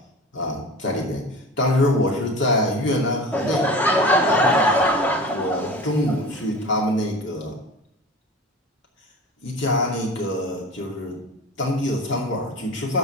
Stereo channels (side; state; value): both; normal; correlation 0.35